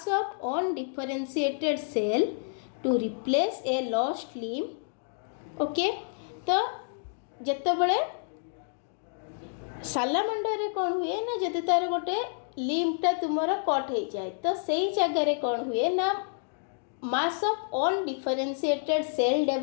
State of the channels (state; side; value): silent; right; digital silence